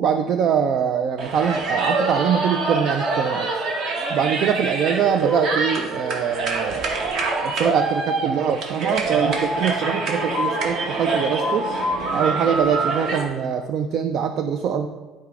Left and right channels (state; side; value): quieter; left; 5.3 dB